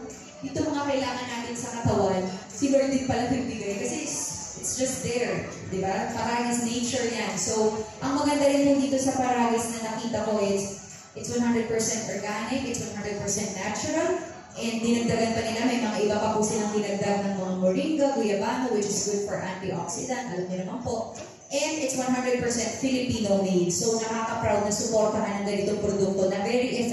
ito mga kailangan natin sa katawan, si Lord din pala nagbigay. Kasi it's just there, di ba? Paragis nature yan. So, ang maganda rin po dito sa Paragis na nakita ko is, it's 100% organic, it's 100% natural, and dinagdagan pa nila, may mga iba pa po silang dinagdag ng mga moringa, guyabano, which is good for antioxidant, alam niyo naman po. And it's 100% Filipino made. So nakaka-proud na suportahan ng ganitong produkto na very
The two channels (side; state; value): both; identical; correlation 1.00